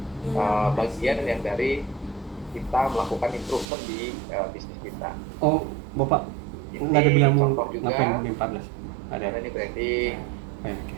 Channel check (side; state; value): left; drops out; at 3.7 s